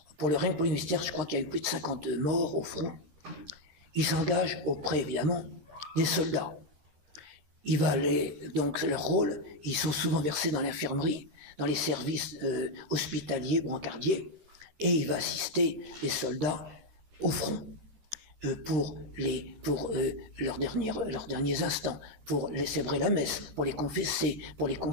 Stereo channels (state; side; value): late; left; 13 ms